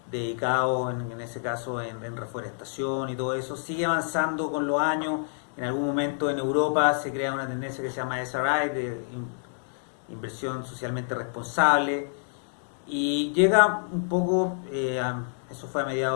dedicados, en ese caso, en reforestación y todo eso. Sigue avanzando con los años. En algún momento en Europa se crea una tendencia que se llama SRI, de inversión socialmente responsable, y llega un poco, eso fue a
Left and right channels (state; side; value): silent; right; digital silence